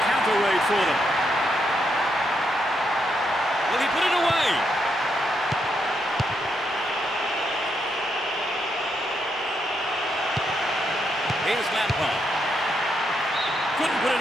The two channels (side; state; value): both; normal; correlation 0.79